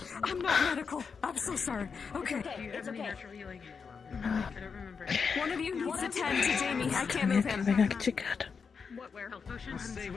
I'm not medical. I'm so sorry. Okay, it's okay. One of you needs to tend to Jamie. I can't move him. We're gonna get you good. What warehouse potions? Stay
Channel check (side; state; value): right; quieter; 5.7 dB